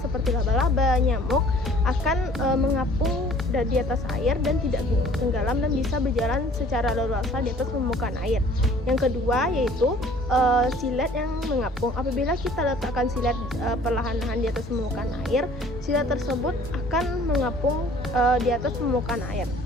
laba-laba, nyamuk akan mengapung di atas air dan tidak tenggelam dan bisa berjalan secara leluasa di atas permukaan air. Yang kedua yaitu silet yang mengapung. Apabila kita letakkan silet perlahan-lahan di atas permukaan air, silet tersebut akan mengapung di atas permukaan air.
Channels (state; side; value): normal; both; correlation 0.53